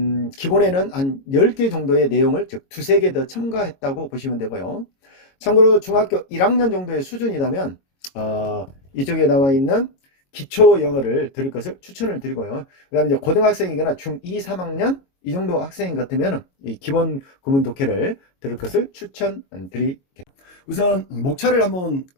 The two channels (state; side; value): late; right; 22 ms